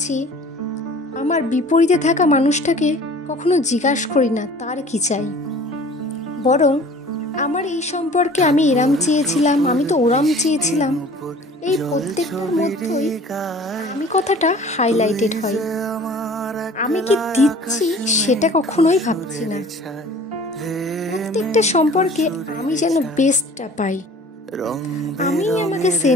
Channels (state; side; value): normal; both; correlation 0.47